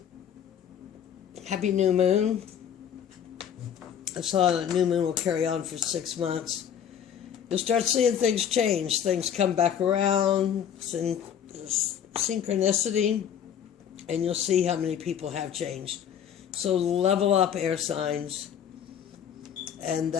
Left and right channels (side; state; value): right; quieter; 8.8 dB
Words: Happy new moon. I saw the new moon will carry on for 6 months. You'll start seeing things change. Things come back around. Synchronicity. And you'll see how many people have changed. So level up, air signs. And